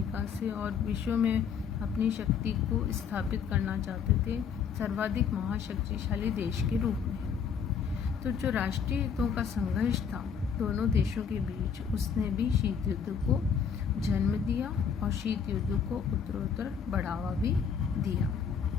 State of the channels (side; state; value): right; quieter; 6.9 dB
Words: से, और विश्व में अपनी शक्ति को स्थापित करना चाहते थे सर्वाधिक महाशक्तिशाली देश के रूप में। तो जो राष्ट्रीय हितों का संघर्ष था दोनों देशों के बीच, उसने भी शीत युद्ध को जन्म दिया, और शीत युद्ध को उत्तरोत्तर बढ़ावा भी दिया।